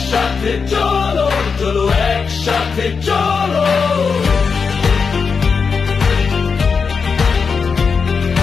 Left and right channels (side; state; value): right; quieter; 5.4 dB